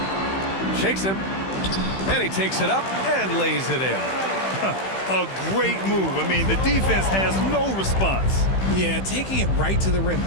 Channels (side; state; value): right; late; 15 ms